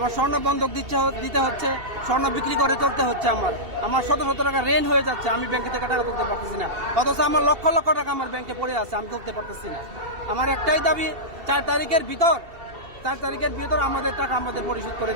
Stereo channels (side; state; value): left; late; 2.7 ms